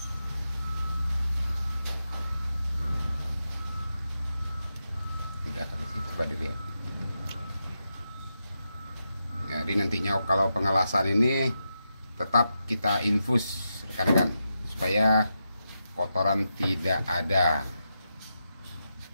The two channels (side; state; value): both; inverted; correlation -0.87